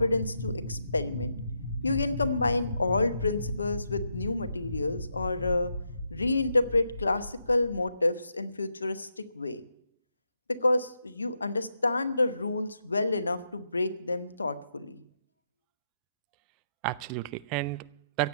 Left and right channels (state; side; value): inverted; both; correlation -0.81